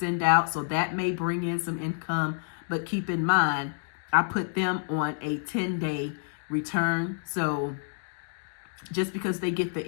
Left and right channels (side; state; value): right; silent; 59 dB below the other